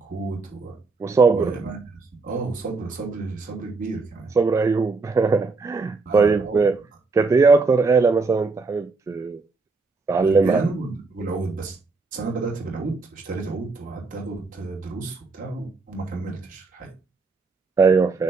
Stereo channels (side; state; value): left; quieter; 4.0 dB